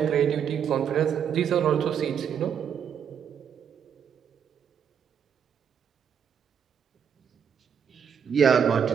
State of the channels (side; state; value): left; quieter; 7.8 dB